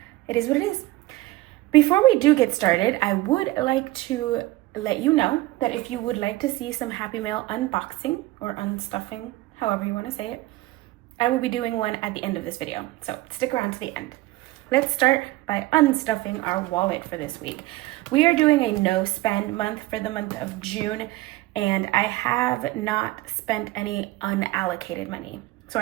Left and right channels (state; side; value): quieter; left; 18.3 dB